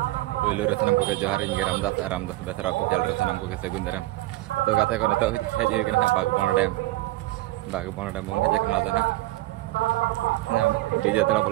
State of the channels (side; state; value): left; quieter; 18.2 dB